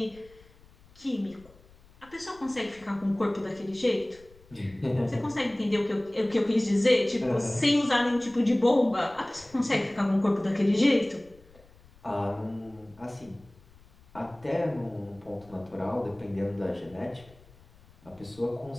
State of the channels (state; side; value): noise; left; rumble, 26 dB below the sound